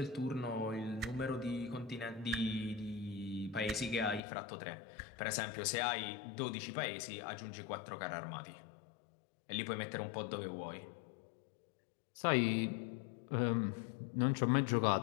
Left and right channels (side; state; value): right; drops out; at 4.2 s